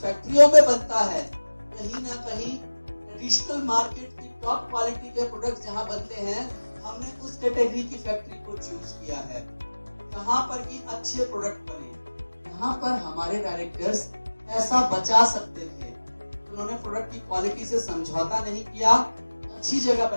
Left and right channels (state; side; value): inverted; both; correlation -1.00